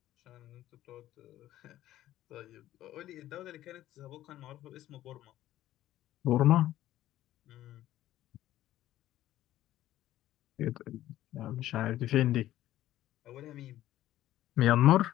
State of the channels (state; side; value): quieter; right; 13.9 dB